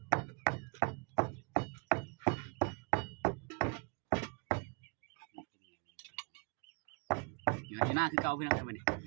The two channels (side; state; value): left; quieter; 32.8 dB